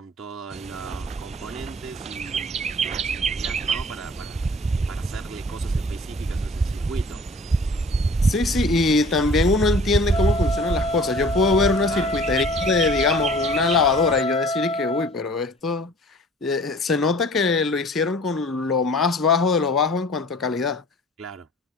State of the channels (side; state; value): both; normal; correlation 0.48